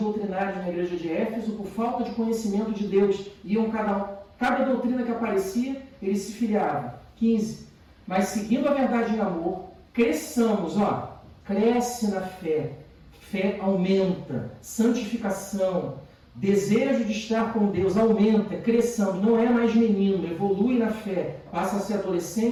na igreja de Éfeso por falta de conhecimento de Deus. Iam cada doutrina que aparecia, eles se filiavam. 15. Mas seguindo a verdade em amor, cresçamos, ó, cresce na fé. Fé aumenta, santificação, desejo de estar com Deus aumenta, cresçamos, não é mais menino, evolui na fé, passa a ser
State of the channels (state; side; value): identical; both; correlation 1.00